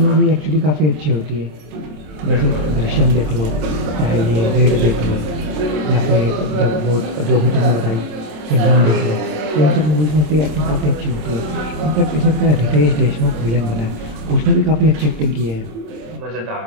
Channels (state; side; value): late; left; 27 ms